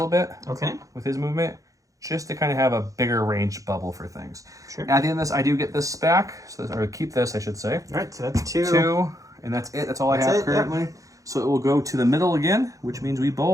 bit. Okay. With his movement, just to kind of have a bigger range bubble for things. Sure. At the end of this, I do get this back, or keep this, I should say. All right, so that's 2. 2, and that's it. That's all I have currently. Yep. So it will go to the middle again, which means we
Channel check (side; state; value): left; late; 0.16 ms